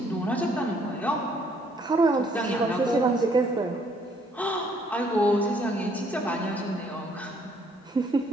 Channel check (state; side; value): normal; both; correlation 0.65